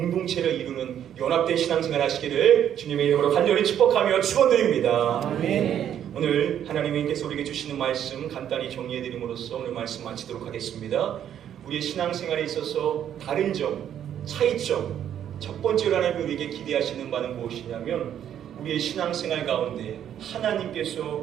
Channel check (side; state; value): left; quieter; 10.0 dB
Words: 이루는 연합된 신앙생활 하시기를 주님의 이름으로 간절히 축복하며 축원드립니다. 아멘. 오늘 하나님께서 우리에게 주시는 말씀 간단히 정리해드림으로써 오늘 말씀 마치도록 하겠습니다. 우리의 신앙생활에 있어서 다른 점, 차이점, 첫 번째로 하나님이 우리에게 기대하시는 바는 무엇이냐면 우리의 신앙생활 가운데